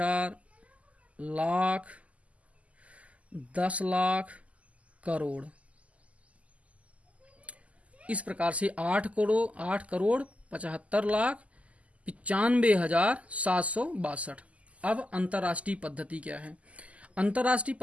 लाख, 10 लाख, करोड़। इस प्रकार से 8 करोड़ 75 लाख 95,762। अब अंतर्राष्ट्रीय पद्धति क्या है। अंतर्राष्ट्रीय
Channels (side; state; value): left; late; 0.068 ms